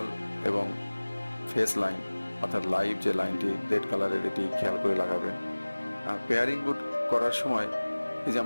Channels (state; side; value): inverted; both; correlation -1.00